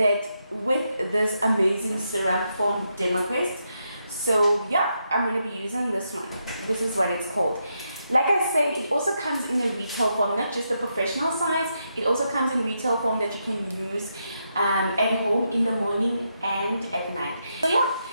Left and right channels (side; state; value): both; inverted; correlation -0.82